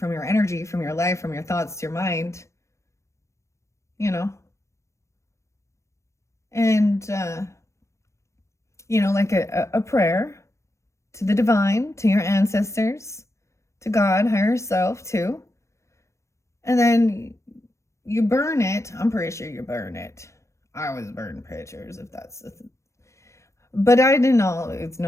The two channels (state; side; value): late; right; 0.14 ms